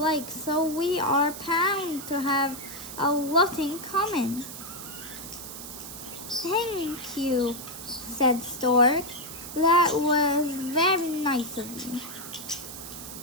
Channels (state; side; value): noise; right; hiss, 11 dB below the sound